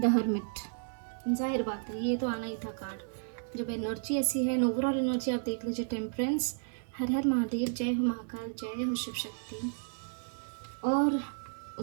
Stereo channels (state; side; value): silent; left; digital silence